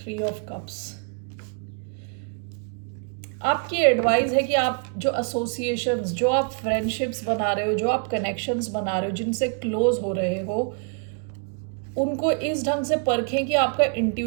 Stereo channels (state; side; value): quieter; left; 37.9 dB